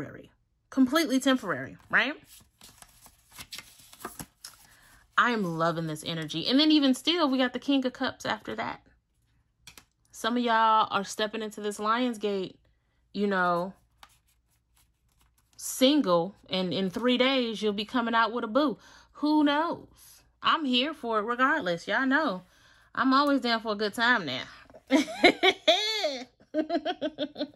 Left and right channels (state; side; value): identical; both; correlation 1.00